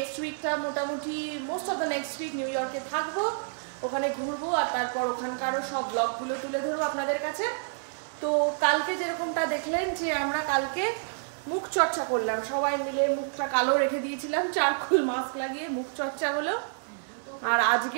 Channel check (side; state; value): left; silent; 58 dB below the other